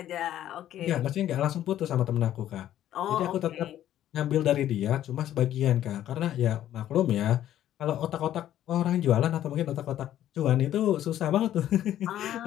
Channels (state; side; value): quieter; right; 12.0 dB